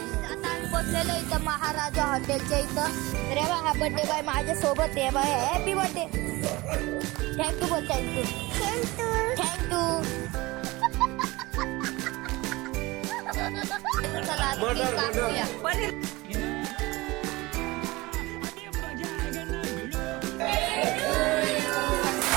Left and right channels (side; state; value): left; quieter; 21.5 dB